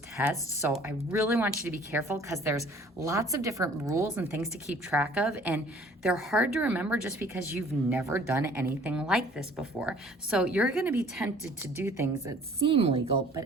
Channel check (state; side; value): normal; both; correlation 0.53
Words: test. So I really want you to be careful because there's lots of different rules and things to keep track of, and they're hard to remember just because you've never done anything like this before. So you're going to be tempted to do things that seem legal but